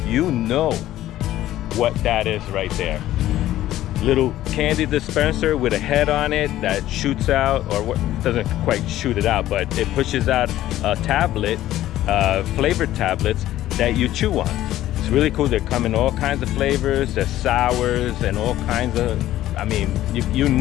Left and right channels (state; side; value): quieter; right; 13.9 dB